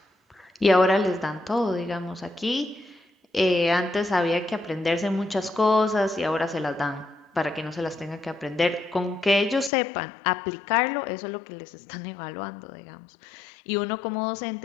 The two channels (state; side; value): drops out; right; at 9.7 s